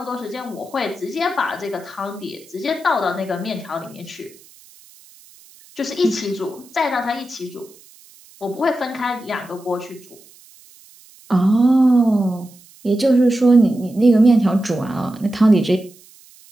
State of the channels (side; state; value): right; noise; hiss, 25 dB below the sound